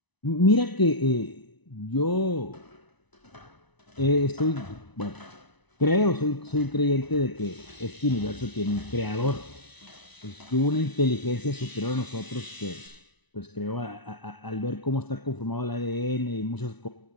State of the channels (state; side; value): late; right; 1.0 ms